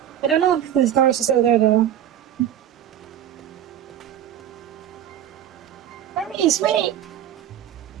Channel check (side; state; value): left; quieter; 10.6 dB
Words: I don't know if this doors are still there, though. Hermes, wait!